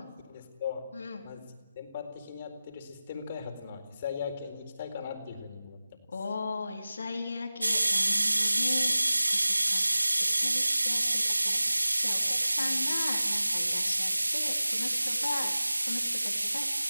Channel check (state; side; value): inverted; both; correlation -0.96